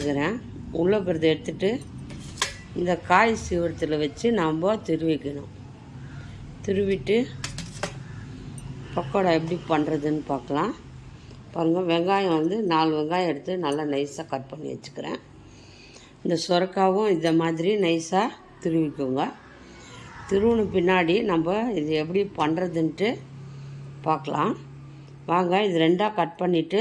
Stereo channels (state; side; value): identical; both; correlation 1.00